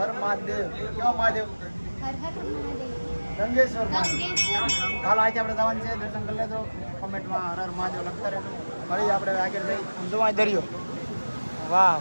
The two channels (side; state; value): both; inverted; correlation -1.00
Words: હર મહાદેવ. કેવો મહાદેવ? हर हर महादेव. ગંગેશ્વર મહાદેવ. હાલો આજે આપણે જવાનું છે. દર્શન કરી લેજો. કમેન્ટમાં હર હર મહાદેવ લખતા રહેજો. ફરી આપણે આગળ જઈ જોવા દરિયો. વાહ